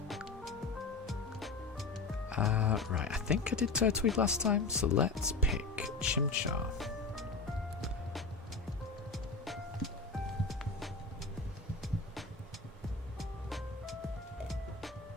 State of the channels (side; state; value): right; quieter; 3.8 dB